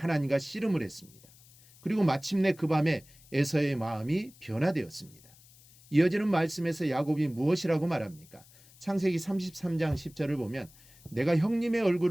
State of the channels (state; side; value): noise; left; hiss, 25 dB below the sound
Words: 씨름을 했습니다. 그리고 마침내 그 밤에 에서의 마음이 변화되었습니다. 이어지는 말씀에서 야곱이 무엇이라고 말합니까? 창세기 33장 10절을 보면 내가 형님의